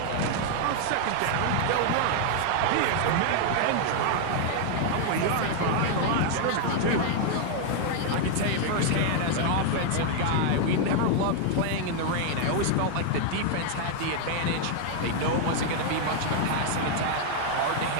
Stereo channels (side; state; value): both; different; correlation 0.00